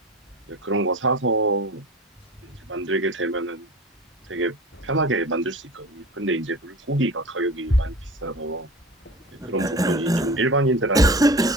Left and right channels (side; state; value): both; normal; correlation 0.36